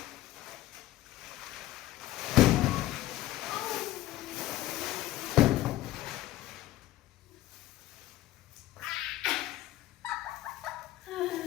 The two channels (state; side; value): quieter; right; 15.3 dB